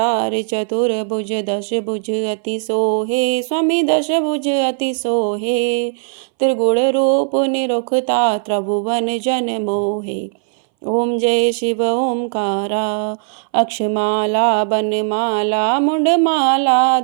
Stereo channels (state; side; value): silent; left; 64 dB below the other